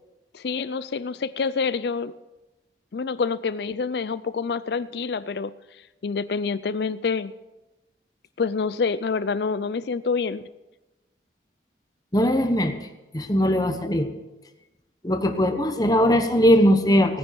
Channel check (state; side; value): normal; both; correlation 0.52